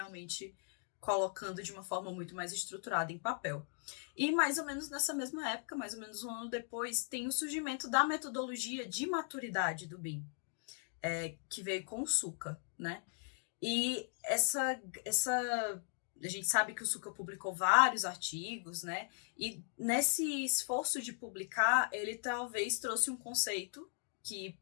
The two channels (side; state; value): right; silent; 52 dB below the other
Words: colocando de uma forma muito mais estruturada em papel. E mais ou menos nessa mesma época, mais ou menos um ano depois, tem o surgimento da metodologia de maturidade do BIM, que veio com o SUCA, né? E a gente sabe que o SUCA publicou vários artigos, né? E nesse esforço de publicar, ele talvez trouxe um conceito que,